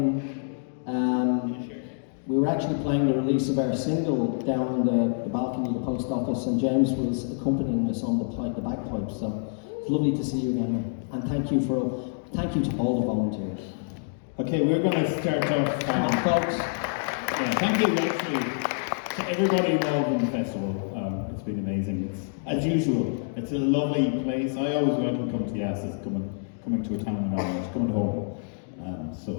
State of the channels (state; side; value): silent; right; digital silence